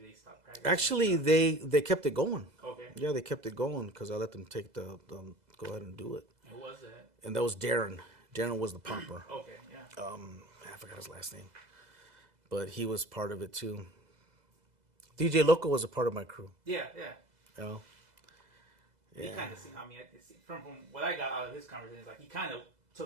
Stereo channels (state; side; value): late; left; 2.0 ms